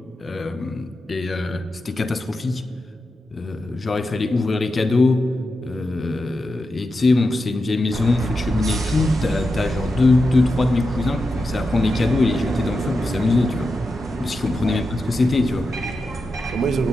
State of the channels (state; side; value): normal; both; correlation 0.89